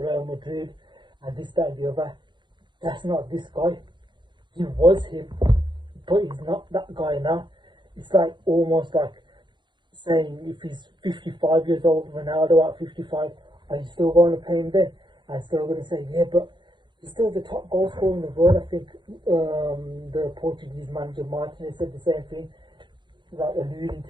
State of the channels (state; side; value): late; left; 0.23 ms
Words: Real Madrid and this, that, and the other. That's not this guy. He was him, but he's not that guy now. It's like almost like saying, if he's 55 years old, Ronaldo at 55, are you still going to play him then? I'm still going to say, yeah, but he's still the top goal scorer in the world. I think the Portuguese manager Martinez said the same thing, like alluding